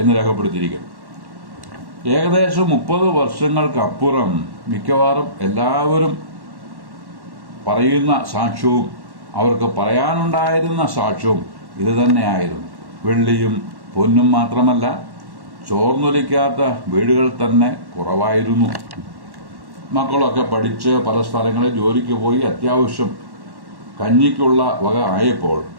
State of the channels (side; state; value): left; late; 1.1 ms